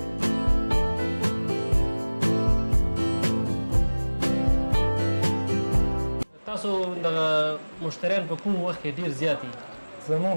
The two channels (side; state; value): both; inverted; correlation -1.00